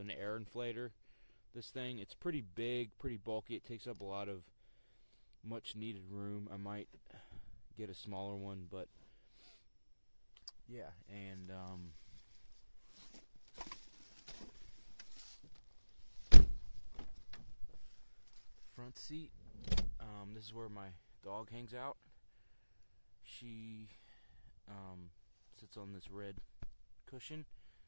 air inflator. This thing, it's pretty big, pretty bulky. It takes up a lot of much needed room. I might get a smaller one, but yeah. And front seat, this is where my dog hangs out. She sits on this red cushion,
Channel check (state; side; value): inverted; both; correlation -1.00